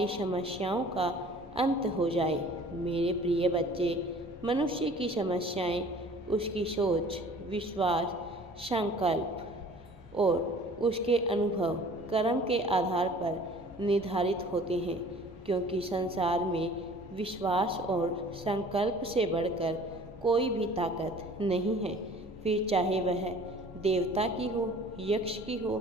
समस्याओं का अंत हो जाए। मेरे प्रिय बच्चे, मनुष्य की समस्याएं उसकी सोच, विश्वास, संकल्प और उसके अनुभव कर्म के आधार पर निर्धारित होते हैं, क्योंकि संसार में विश्वास और संकल्प से बढ़कर कोई भी ताकत नहीं है। फिर चाहे वह देवता की हो, यक्ष की हो,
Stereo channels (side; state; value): both; normal; correlation 0.49